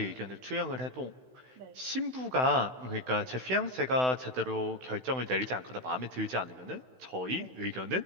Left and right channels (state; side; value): late; left; 16 ms